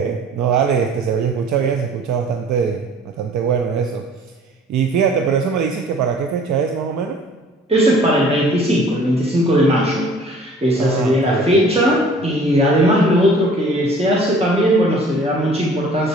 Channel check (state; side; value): normal; both; correlation 0.50